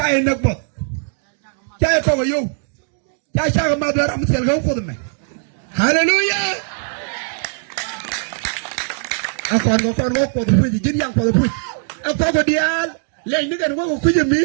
nak bot jaay ko yo jaay sa ma dara am sel ga ko me hallelujah akon ko fu jin yang ko fu akon ko dial le ni gan ko ku jemi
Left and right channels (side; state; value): left; silent; 63 dB below the other